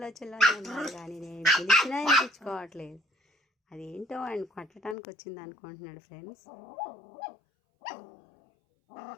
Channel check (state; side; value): drops out; right; at 5.0 s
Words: ఉన్నారు కానీ నేను పిలిచినా వినిపించుకోవట్లేదు. అదేంటో ఆయన కొట్టడానికి వచ్చింది అనుకుంటున్నాడు ఫ్రెండ్స్.